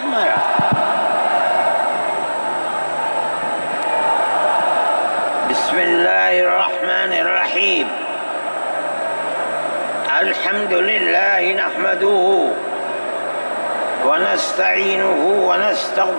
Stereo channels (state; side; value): inverted; both; correlation -1.00